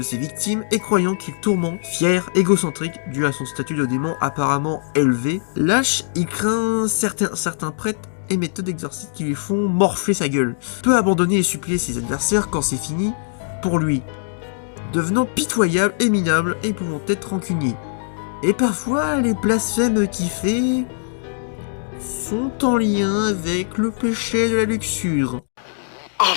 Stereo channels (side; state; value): right; silent; digital silence